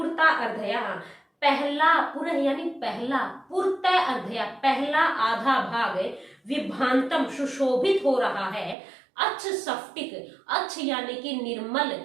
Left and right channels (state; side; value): drops out; left; at 8.8 s